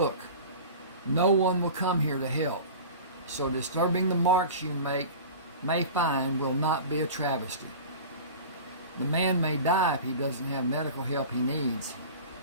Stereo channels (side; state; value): both; inverted; correlation -0.36